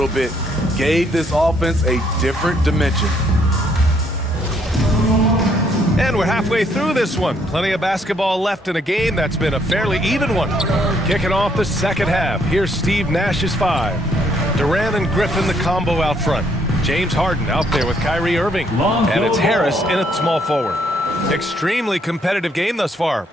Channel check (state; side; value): normal; both; correlation 0.69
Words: bit, gave this offense a different dimension. And we're halfway through this one. Plenty of basketball left in a game that's been a fairly even one. Kicking off the second half, here's Steve Nash's 5. Durant and Griffin the combo out front. James Harden out there with Kyrie Irving. And it's Harris in at small forward. Extremely competitive game thus far.